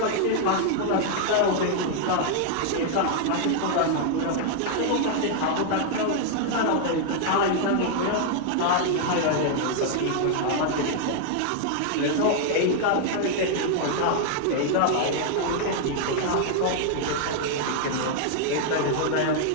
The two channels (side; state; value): both; different; correlation 0.00